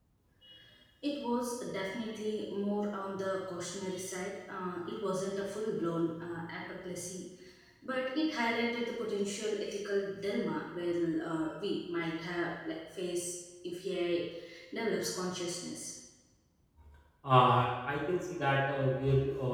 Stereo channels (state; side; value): identical; both; correlation 1.00